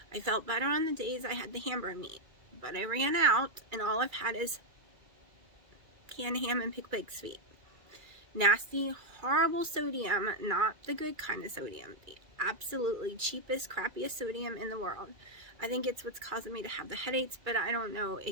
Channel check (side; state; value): left; late; 2.3 ms